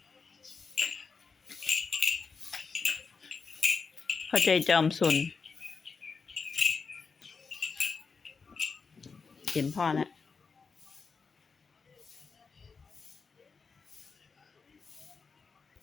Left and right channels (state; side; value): quieter; right; 5.0 dB